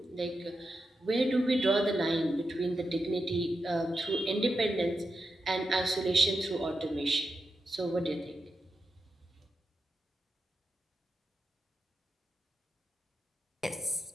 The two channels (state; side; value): normal; both; correlation 0.87